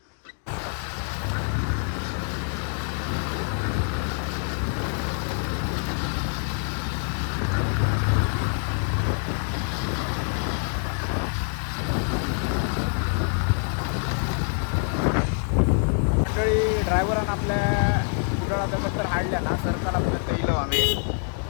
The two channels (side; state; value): right; silent; 55 dB below the other